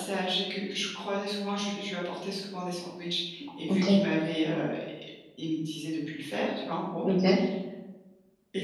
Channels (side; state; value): both; identical; correlation 1.00